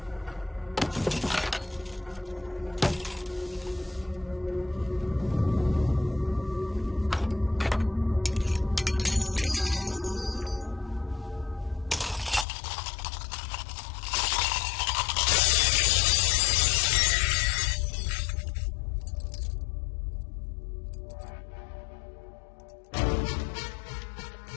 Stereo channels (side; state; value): right; drops out; at 12.5 s